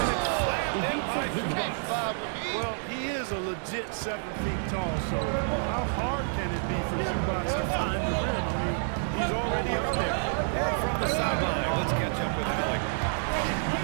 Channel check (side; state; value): left; silent; digital silence